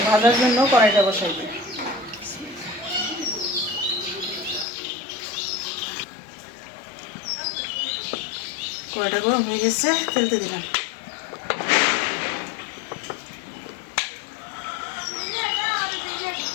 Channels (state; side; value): drops out; right; at 4.7 s